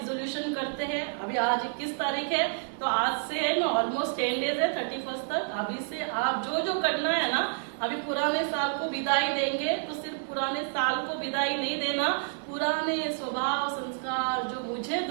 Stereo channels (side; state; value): left; silent; digital silence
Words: करते हैं। अभी आज 21 तारीख है, तो आज से है ना ऑलमोस्ट 10 डेज है 31 तक। अभी से आप जो जो करना है ना, अभी पुराने साल को विदाई देंगे, तो सिर्फ पुराने साल को विदाई नहीं देना, पुराने स्वभाव संस्कार जो मुझे